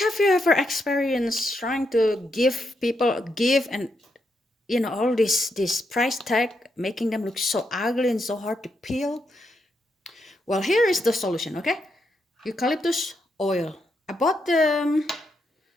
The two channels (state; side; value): normal; both; correlation 0.81